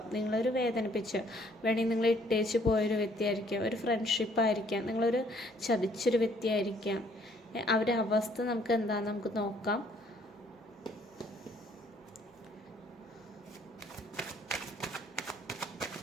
നിങ്ങളൊരു വേദനിപ്പിച്ച് വേണമെങ്കിൽ നിങ്ങൾ ഇട്ടേച്ച് പോയൊരു വ്യക്തിയായിരിക്കാം, ഒരു ഫ്രണ്ട്ഷിപ്പായിരിക്കാം, നിങ്ങളൊരു ചതിച്ചൊരു വ്യക്തിയായിരിക്കാം. അവരുടെ അവസ്ഥ നമുക്ക് എന്താണെന്ന് നമുക്ക് നോക്കാം.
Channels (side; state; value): both; normal; correlation 0.63